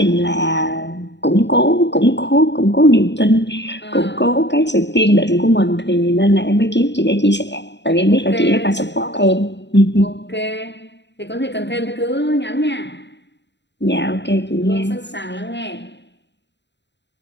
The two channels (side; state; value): right; late; 0.51 ms